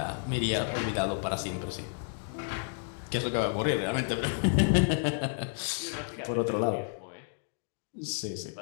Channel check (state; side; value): silent; right; digital silence